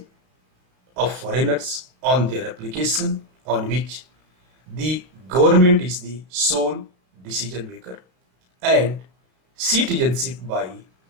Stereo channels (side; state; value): left; late; 33 ms